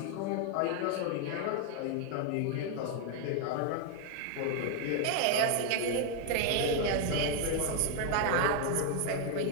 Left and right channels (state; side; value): different; both; correlation 0.00